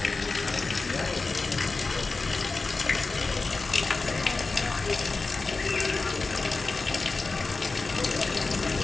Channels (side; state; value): right; quieter; 3.8 dB